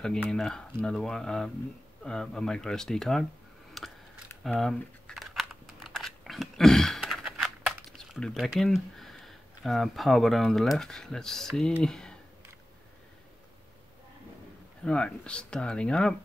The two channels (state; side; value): normal; both; correlation 0.95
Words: in another one, a micro SD card. Let's put it back in. Power button on the left. Let's see. Right, starting up.